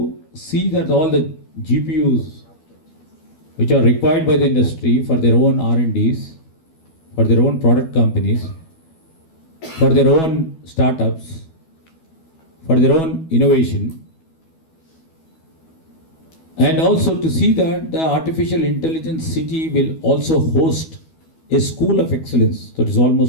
see that all the GPUs which are required by the industry for their own R&Ds, for their own product companies, for their own startups, for their own innovation, and also to see that the artificial intelligence city will also host a school of excellence that is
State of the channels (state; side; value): late; right; 12 ms